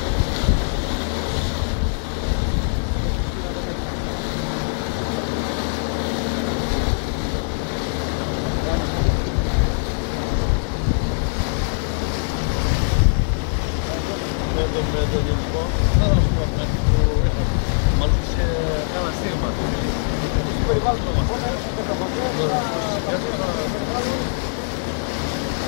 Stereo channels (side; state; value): right; silent; digital silence